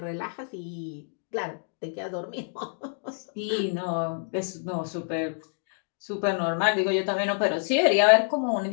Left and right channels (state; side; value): silent; right; digital silence